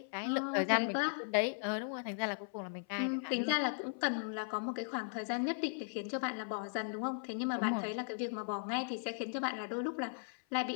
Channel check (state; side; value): silent; right; 53 dB below the other